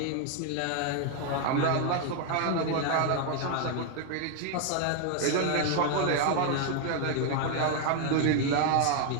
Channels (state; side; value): different; both; correlation 0.01